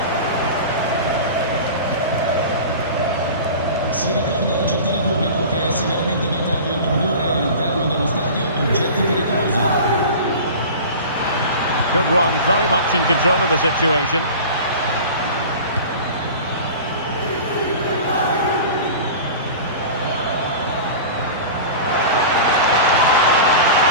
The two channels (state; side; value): inverted; both; correlation -0.35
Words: Si ricorda al gentile pubblico che è severamente vietato introdurre all'interno dello stadio oggetti pericolosi. Good run, very much in control of the situation.